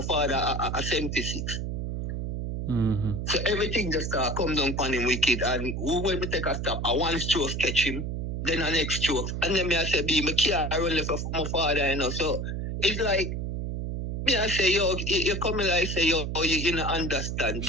father a 76. So everything just come down upon him wicked. And when we take a stop, I one stroke catch him, then the next stroke. And then I say, my can't run left for my father, you know. So it's like, me I say, yo, you come in like say, yo, you don't understand.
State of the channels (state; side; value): noise; right; hum, 3 dB below the sound